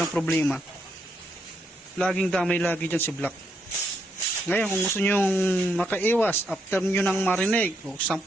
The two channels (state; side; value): normal; both; correlation 0.77